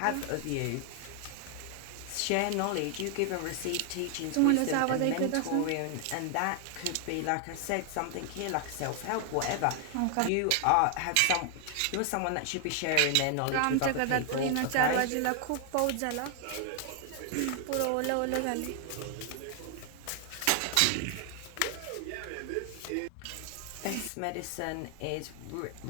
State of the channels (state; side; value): different; both; correlation 0.00